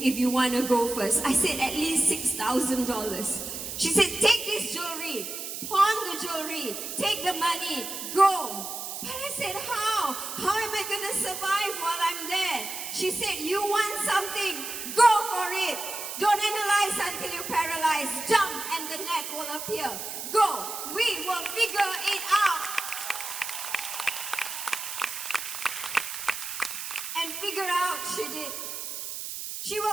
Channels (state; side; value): noise; right; hiss, 6 dB below the sound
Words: if you want to go first? I said, at least $6,000. She said, take this jewelry, pawn the jewelry, take the money, go. But I said, how? How am I going to survive while I'm there? She said, you want something, go for it. Don't analyze until you're paralyzed. Jump and the net will appear. Go. We will figure it out. And figure out she did. She